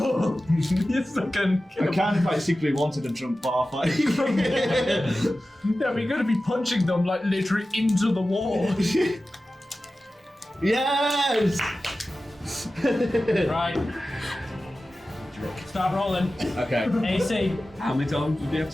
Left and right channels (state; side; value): normal; both; correlation 0.95